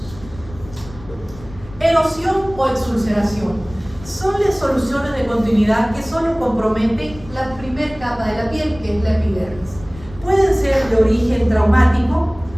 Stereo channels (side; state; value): left; noise; rumble, 18 dB below the sound